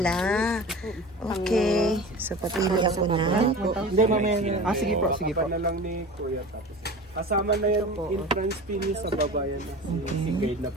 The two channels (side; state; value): both; normal; correlation 0.35